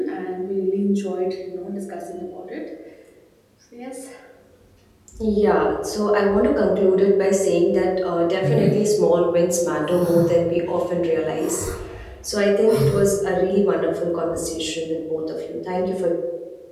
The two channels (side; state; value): both; identical; correlation 1.00